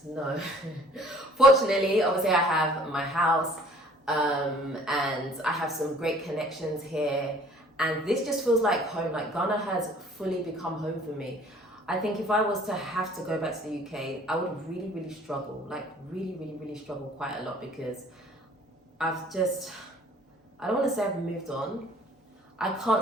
No. Fortunately, obviously I have my house, and I have some great connections here, and this just feels like home. Like Ghana has fully become home for me. I think if I was to have to go back to the UK, I would really, really struggle. Like really, really, really struggle quite a lot, because I don't want to say I've moved on. I can't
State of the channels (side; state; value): both; normal; correlation 0.54